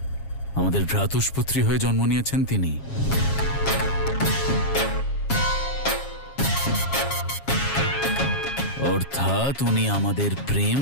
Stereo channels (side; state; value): right; late; 7.3 ms